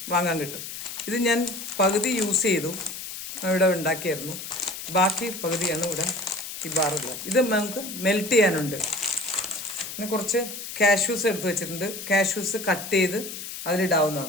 വാങ്ങാൻ കിട്ടും. ഇത് ഞാൻ പകുതി യൂസ് ചെയ്തു, ഇവിടെ ഉണ്ടാക്കിയായിരുന്നു. ബാക്കി പകുതിയാണ് ഇവിടെ ഈ ബാറുള്ളത്. ഇത് നമുക്ക് മെൽറ്റ് ചെയ്യാനുണ്ട്. പിന്നെ കുറച്ച് കാഷ്യൂസ് എടുത്ത് വെച്ചിട്ടുണ്ട്. കാഷ്യൂസ് കട്ട് ചെയ്ത്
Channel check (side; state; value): left; noise; hiss, 9 dB below the sound